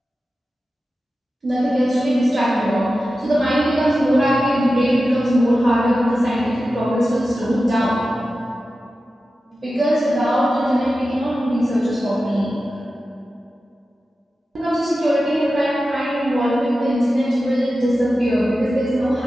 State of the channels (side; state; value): both; normal; correlation 0.93